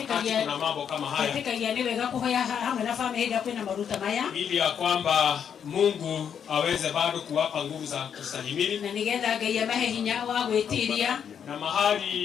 kuna mambo kama haya, ili ya kwamba Mungu aweze bado kuwapa nguvu za kustahimili na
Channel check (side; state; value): right; quieter; 8.0 dB